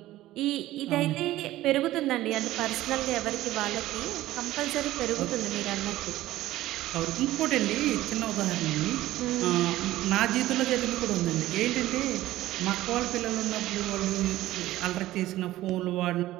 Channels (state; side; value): quieter; left; 15.6 dB